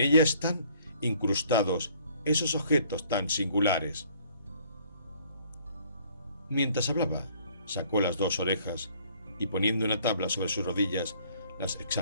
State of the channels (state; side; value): inverted; both; correlation -0.59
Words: están incrustados esos objetos tan singulares. Mientras hablaba, sacó las 2 orejas y poniendo una tabla sobre sus rodillas, las